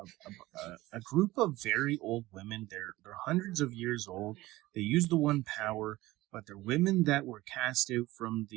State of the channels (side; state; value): left; quieter; 18.3 dB